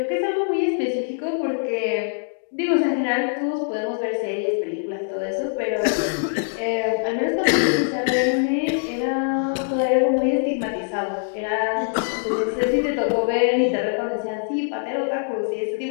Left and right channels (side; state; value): right; silent; digital silence